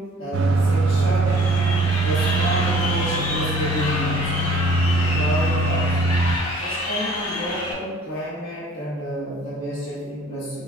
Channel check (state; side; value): normal; both; correlation 0.54